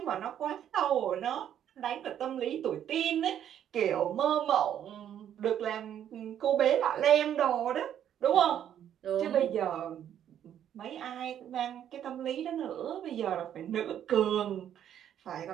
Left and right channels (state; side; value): quieter; left; 10.0 dB